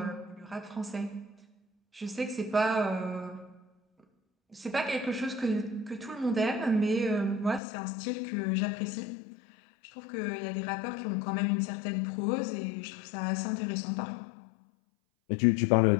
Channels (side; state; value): right; drops out; at 7.6 s